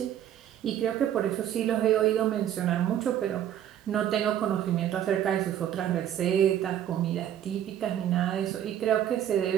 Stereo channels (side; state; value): left; quieter; 10.8 dB